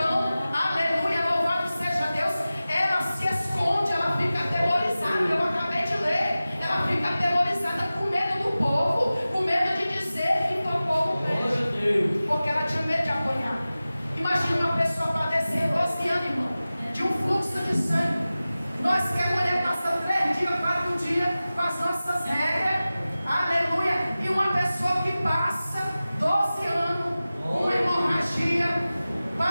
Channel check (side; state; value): both; inverted; correlation -0.96